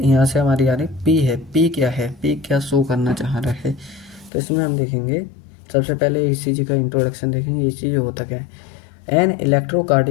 से हमारी आ रही पी है। पी क्या है, पी क्या शो करना चाह रहा है, तो इसमें हम देखेंगे सबसे पहले ईसीजी का इंट्रोडक्शन देखेंगे। ईसीजी होता क्या है? An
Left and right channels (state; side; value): drops out; right; at 4.3 s